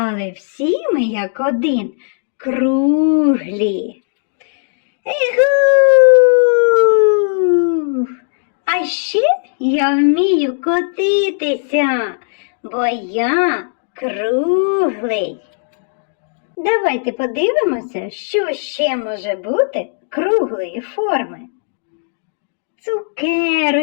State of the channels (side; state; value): right; silent; digital silence